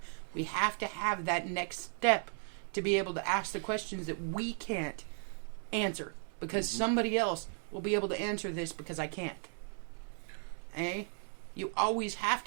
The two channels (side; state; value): left; silent; 54 dB below the other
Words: we have to have that next step to be able to ask the questions that we can't answer. Because somebody else will be able to answer this because I can't. Eh? You always have